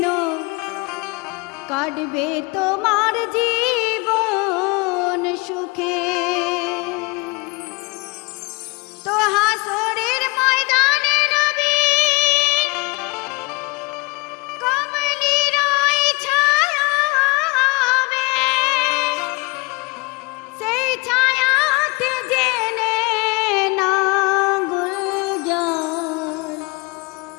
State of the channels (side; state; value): right; quieter; 27.6 dB